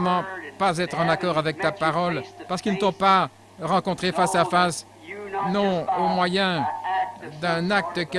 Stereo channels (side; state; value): both; identical; correlation 1.00